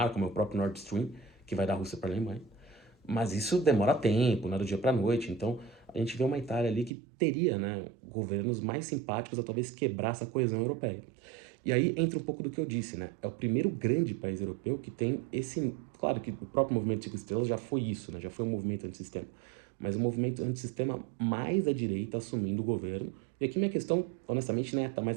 como é o próprio Nord Stream, que vai da Rússia para a Alemanha. Mas isso demora tempo, não é do dia para a noite. Então a gente vê uma Itália ali que teria, né, governos mais simpáticos a talvez quebrar essa coesão europeia. E aí entra um pouco do que eu disse, né? É o primeiro grande país europeu que tem esse... Claro que o próprio movimento Cinco Estrelas já foi isso, né? Já foi um movimento antissistema. Mas um movimento antissistema mais à direita assumindo o governo. E aqui minha questão, honestamente, não é estar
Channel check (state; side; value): drops out; left; at 6.9 s